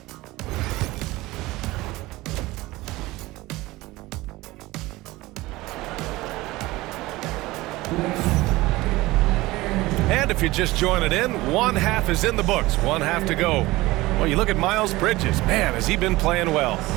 And if you're just joining in, one half is in the books, one half to go. Well, you look at Miles Bridges. Man, has he been playing well.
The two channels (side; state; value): left; quieter; 19.5 dB